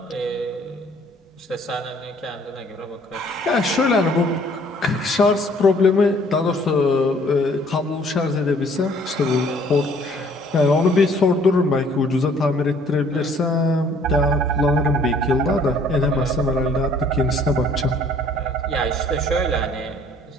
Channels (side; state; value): both; normal; correlation 0.58